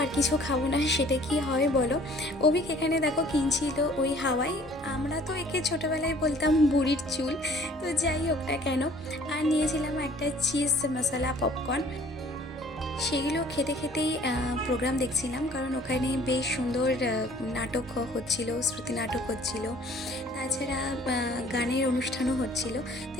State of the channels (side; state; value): both; normal; correlation 0.54